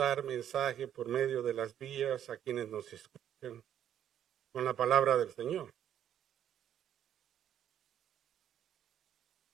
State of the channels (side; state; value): left; quieter; 10.2 dB